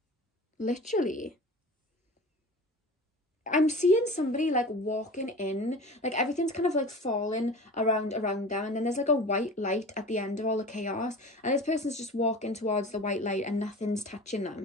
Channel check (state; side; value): normal; both; correlation 0.37